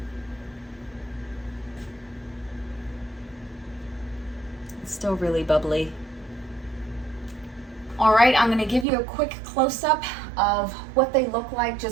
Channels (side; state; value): left; drops out; at 8.8 s